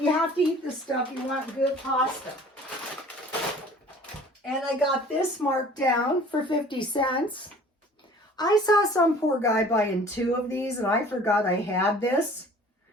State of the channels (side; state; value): both; normal; correlation 0.49